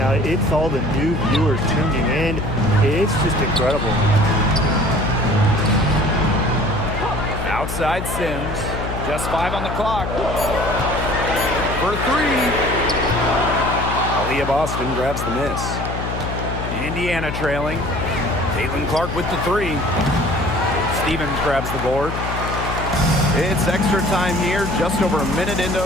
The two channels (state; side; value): noise; left; hum, 5 dB below the sound